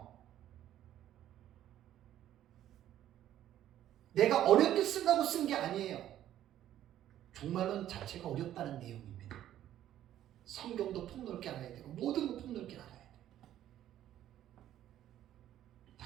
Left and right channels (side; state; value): left; quieter; 12.1 dB